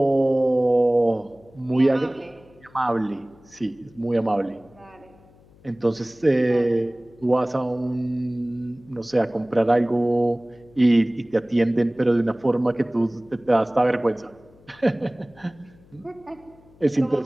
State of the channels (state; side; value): noise; left; hum, 27 dB below the sound